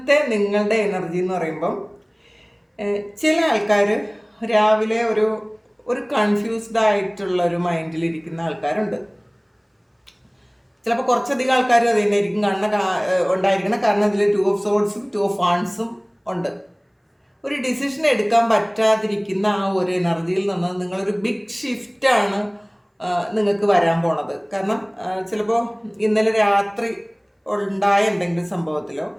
നിങ്ങളുടെ എനർജി എന്ന് പറയുമ്പം ചില ആൾക്കാർ രാവിലെ ഒരു കൺഫ്യൂസ്ഡ് ആയിട്ടുള്ള ഒരു മൈൻഡിലിരിക്കുന്ന ആൾക്കാരുണ്ട്. ചിലപ്പോൾ കുറച്ചധികം ആൾക്കാർ അത് തന്നെയായിരിക്കും ഉണ്ടായിരിക്കണം. കാരണം ഇതിൽ Two of Swordsഉം Two of Wandsഉം ഉണ്ട്. ഒരു ഡിസിഷൻ എടുക്കാൻ പറ്റാതിരിക്കുന്ന ആ ഒരു എനർജിയിൽ നിന്ന് നിങ്ങളൊരു ബിഗ് ഷിഫ്റ്റാണ് നിങ്ങൾക്ക് വരാൻ പോണത്. കാരണം ചിലപ്പോൾ ഇന്നലെ രാത്രി ഉണ്ടായ എന്തെങ്കിലും സംഭവത്തിലോ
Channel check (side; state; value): both; identical; correlation 1.00